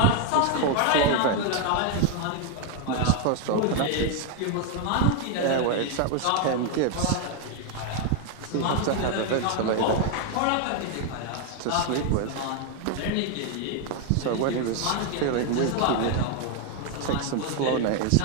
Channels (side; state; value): both; different; correlation 0.01